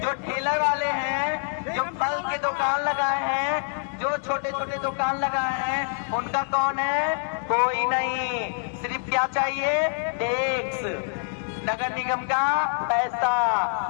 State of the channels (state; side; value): silent; right; 58 dB below the other